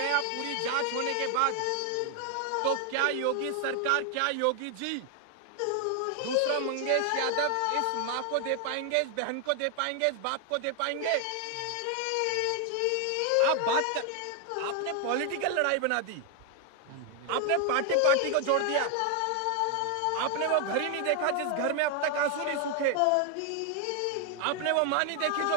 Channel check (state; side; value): different; both; correlation 0.00